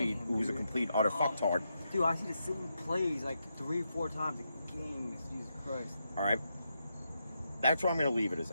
utter fucktard. Dude, I see the same plays like 3 or 4 times a game. Jesus Christ. All right. That's where I'm going to leave it as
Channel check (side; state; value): both; inverted; correlation -0.84